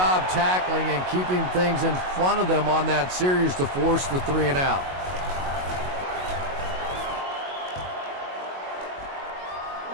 tackling and keeping things in front of them on that series to force the 3 and out.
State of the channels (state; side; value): late; left; 22 ms